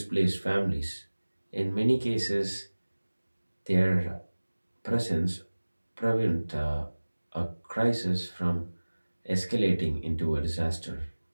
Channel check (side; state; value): both; inverted; correlation -1.00